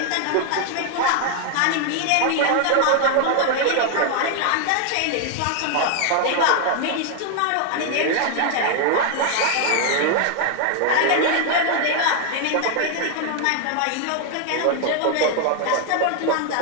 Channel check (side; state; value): both; different; correlation 0.00